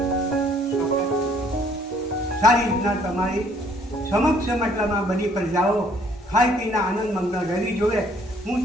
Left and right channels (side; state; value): both; normal; correlation 0.62